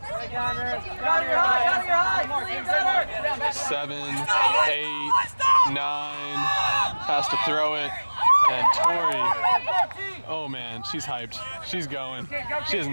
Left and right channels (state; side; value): inverted; both; correlation -1.00